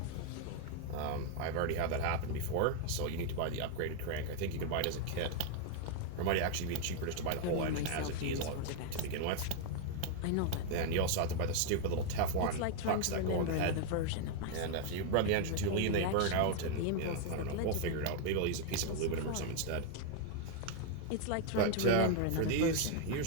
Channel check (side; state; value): both; different; correlation 0.00